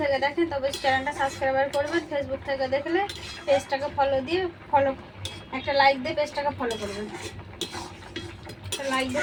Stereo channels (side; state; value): both; identical; correlation 1.00